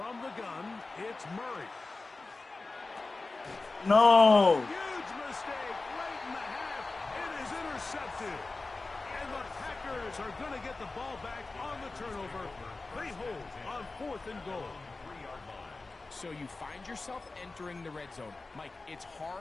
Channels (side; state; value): right; quieter; 3.5 dB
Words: the gun, it's Murray. No. Huge mistake late in the half. It is intercepted. And the Packers are going to get the ball back on the turnover. They hold on 4th and goal. So you find yourself entering the red zone. Mike, it's